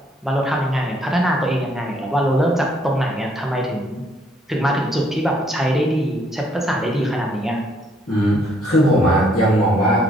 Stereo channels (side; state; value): both; normal; correlation 0.67